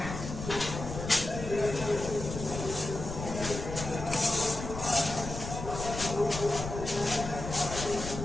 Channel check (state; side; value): noise; left; rumble, 7 dB below the sound